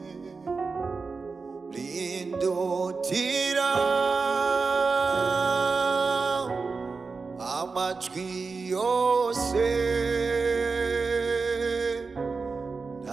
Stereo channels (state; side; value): quieter; left; 4.5 dB